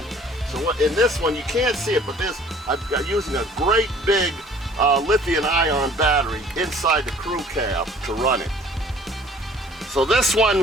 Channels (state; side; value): normal; both; correlation 0.53